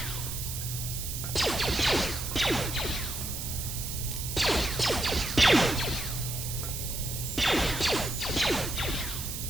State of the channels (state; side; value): noise; right; hiss, 6 dB below the sound